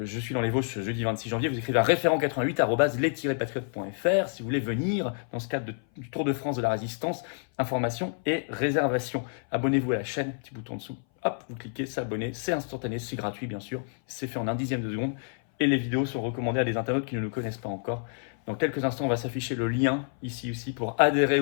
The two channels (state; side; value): silent; right; 58 dB below the other